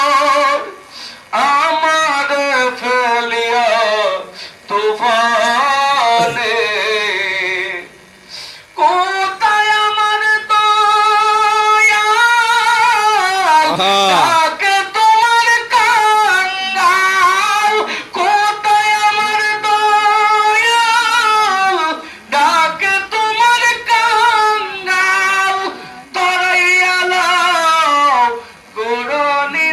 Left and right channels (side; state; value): both; identical; correlation 1.00